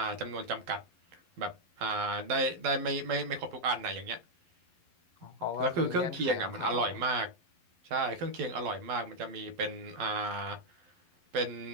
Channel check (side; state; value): left; late; 11 ms